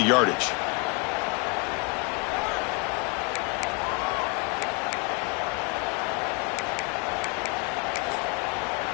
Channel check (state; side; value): quieter; right; 30.8 dB